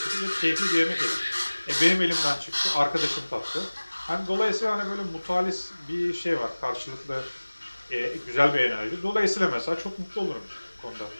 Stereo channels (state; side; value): inverted; both; correlation -1.00